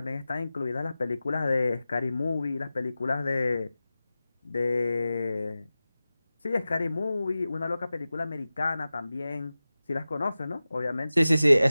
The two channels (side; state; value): both; inverted; correlation -0.95